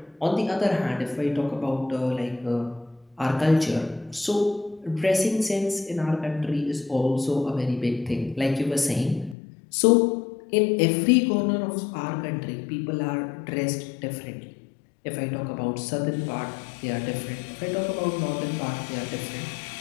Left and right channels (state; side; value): drops out; right; at 9.3 s